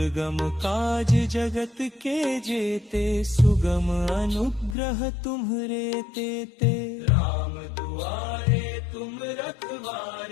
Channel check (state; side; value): drops out; right; at 4.8 s